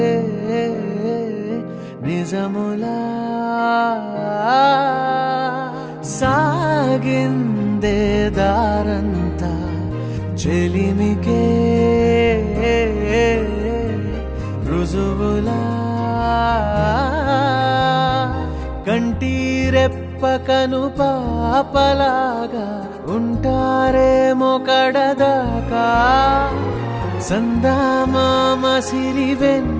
నిజములా సాగిందే దారంతా చెలిమికే రుజువులా కంటి రెప్పకను పాపలాగా ఉంటారేమో కడదాకా సందామామ సిరి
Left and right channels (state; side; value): identical; both; correlation 1.00